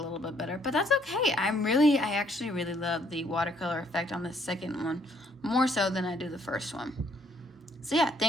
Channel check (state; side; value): normal; both; correlation 0.67